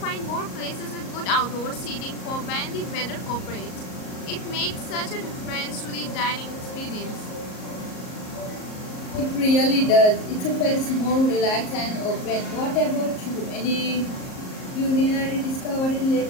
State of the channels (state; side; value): late; right; 38 ms